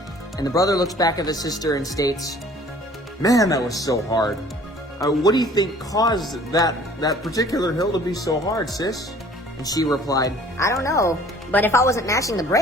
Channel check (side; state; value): both; normal; correlation 0.52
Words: And the brother looks back at the sister and states, "Man, that was so hard. What do you think caused that particular hill to be so hard, sis?" And she replied, I don't know, but if I wasn't mashing the